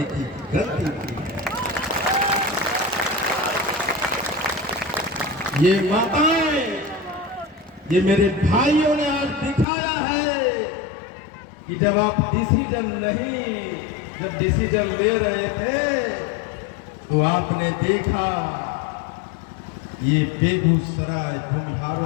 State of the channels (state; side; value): drops out; right; at 9.7 s